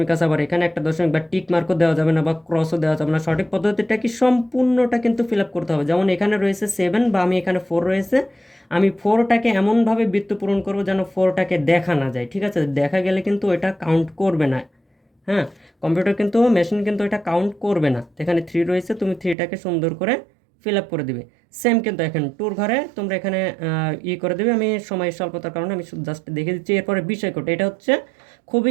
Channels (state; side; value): drops out; left; at 19.4 s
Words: আছে, আবার এখানে একটা দশমিক বা টিক মার্কও দেওয়া যাবে না বা ক্রসও দেওয়া যাবে না। সঠিক পদ্ধতিটা কি, সম্পূর্ণটা কিন্তু ফিল আপ করতে হবে। যেমন এখানে রয়েছে 7 বা আমি এখানে 4 রয়েছে, আমি 4টাকে এমনভাবে বৃত্ত পূরণ করবো যেন 4টাকে দেখা না যায়, ঠিক আছে। দেখা গেলে কিন্তু এটা কাউন্ট করবে না। হ্যাঁ, কম্পিউটার কিন্তু মেশিন কিন্তু এটা কাউন্ট করবে না। এখানে 3 রয়েছে, তুমি 3টাকে সুন্দর করে ফিল আপ করে দিবে। সেম কিন্তু এখন 2 ঘরে তোমরা এখানে করে দেবে। আমি সময় স্বল্পতার কারণে আমি জাস্ট দেখে দিচ্ছি। এরপরে বিষয় কোড, এটা হচ্ছে